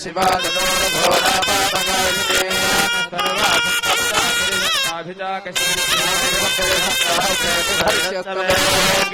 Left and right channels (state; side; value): identical; both; correlation 1.00